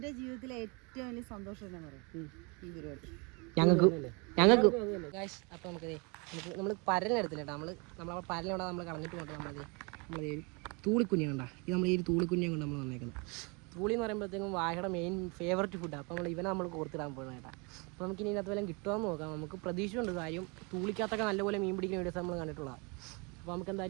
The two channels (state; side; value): quieter; left; 30.8 dB